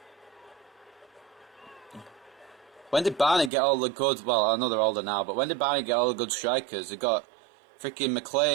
When did Barney get all the good... Well, I know they're older now, but when did Barney get all the good strikers? They got freaking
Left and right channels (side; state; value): left; drops out; at 3.5 s